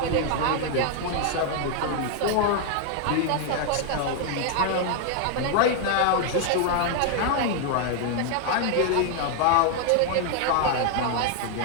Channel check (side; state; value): both; different; correlation 0.00